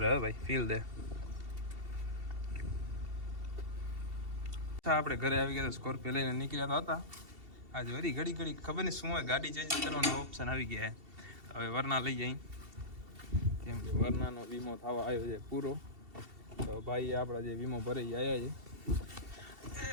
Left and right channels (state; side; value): late; left; 2.7 ms